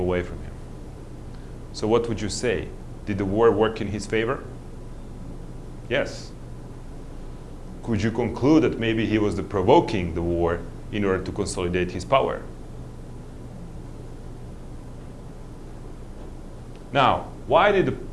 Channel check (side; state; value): both; identical; correlation 1.00